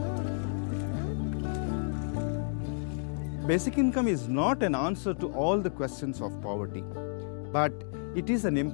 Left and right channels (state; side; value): silent; right; digital silence